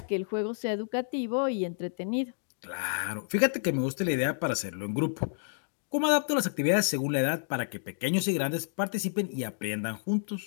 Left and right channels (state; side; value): silent; right; digital silence